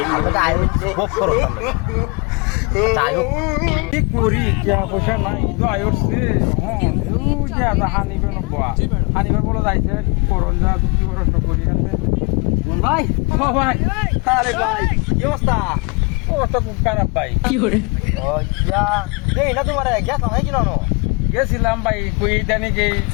গোপ করো কি করি টিয়া পয়সা নাই ঈদ আয়োছে হানিবার বলে যাইছে করন যা কি প্রশ্ন করি আছে ভাই ও ভাই আরে ভাই কি অবস্থা অবস্থা খুব খারাপ ভাই ও ইয়া দেই না তোমার গ্যাস হয় কি নানো গেছিলাম ভাই কই জানি কি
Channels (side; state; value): right; quieter; 29.8 dB